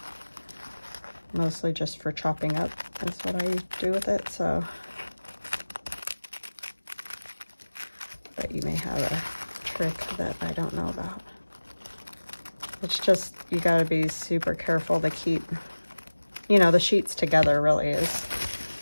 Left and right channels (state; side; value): inverted; both; correlation -1.00